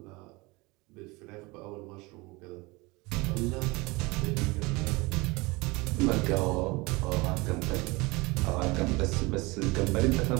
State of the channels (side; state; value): left; quieter; 24.3 dB